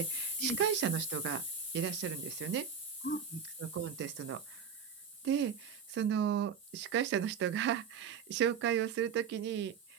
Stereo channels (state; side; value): quieter; left; 6.9 dB